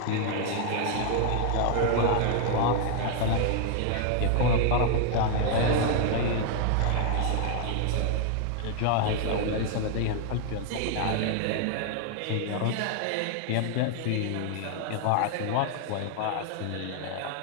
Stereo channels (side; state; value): both; different; correlation 0.00